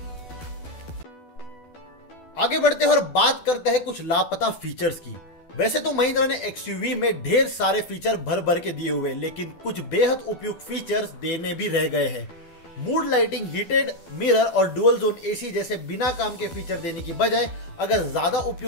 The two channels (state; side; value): late; right; 12 ms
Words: आगे बढ़ते हैं और बात करते हैं कुछ लापता फीचर्स की। वैसे तो महिंद्रा ने XUV में ढेर सारे फीचर भर भर के दिए हुए, लेकिन कुछ बेहद उपयुक्त फीचर्स देने भी रह गए हैं। मूड लाइटिंग, हीटेड मिरर और डुअल जोन AC जैसे बिना काम के फीचर देने की बजाय अगर ज्यादा